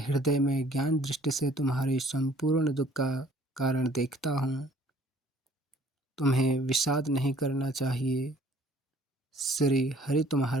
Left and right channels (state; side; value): normal; both; correlation 0.56